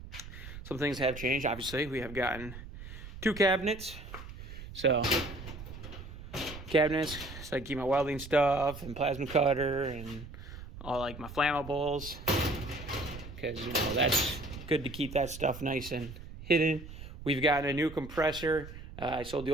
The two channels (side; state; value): right; noise; rumble, 13 dB below the sound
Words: Some things have changed. Obviously, we have gotten 2 cabinets. So, cabinets, so I keep my welding stuff and plasma cutter and all like my flammables. Because, you know, that's good to keep that stuff nice and hidden. We've gotten a new compressor. I sold the